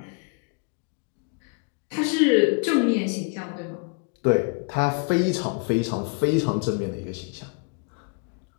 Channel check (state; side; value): quieter; right; 35.3 dB